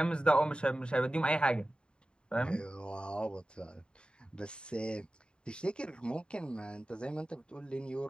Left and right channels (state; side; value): late; right; 0.051 ms